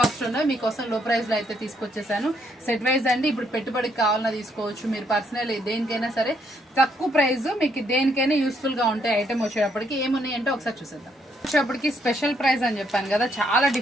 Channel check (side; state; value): both; normal; correlation 0.72